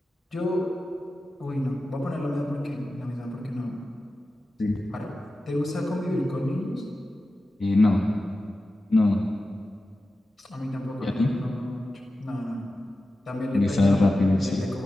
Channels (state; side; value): normal; both; correlation 0.93